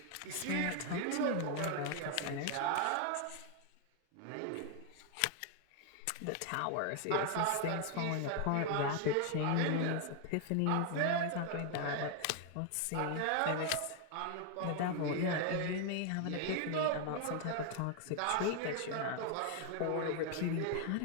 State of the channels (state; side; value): different; both; correlation 0.00